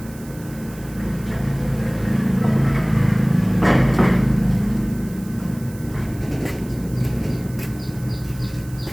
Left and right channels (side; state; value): right; noise; hiss, 21 dB below the sound